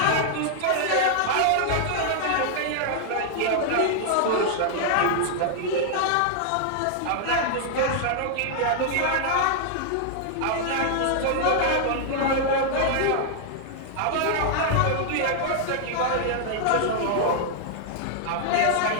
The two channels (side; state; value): both; different; correlation -0.01